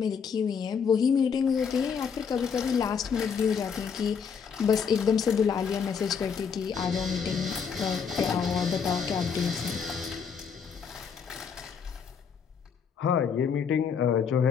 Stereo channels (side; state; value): right; quieter; 6.5 dB